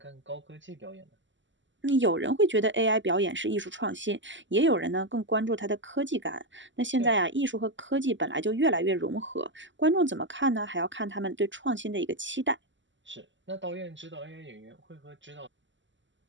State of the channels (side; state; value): left; late; 0.54 ms